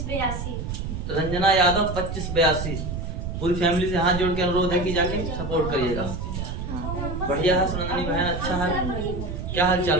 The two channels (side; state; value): right; noise; rumble, 5 dB below the sound